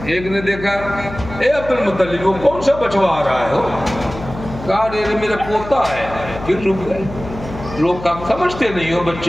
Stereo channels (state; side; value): noise; left; hum, 12 dB below the sound